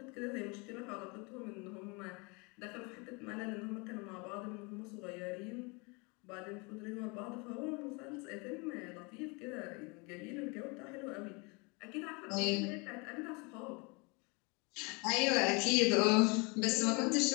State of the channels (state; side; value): quieter; right; 29.7 dB